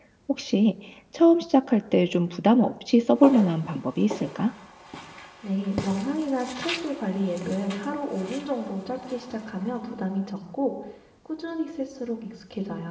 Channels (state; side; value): identical; both; correlation 1.00